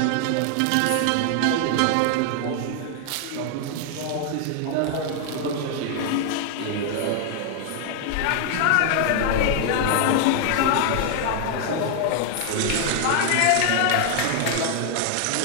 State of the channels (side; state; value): both; different; correlation 0.00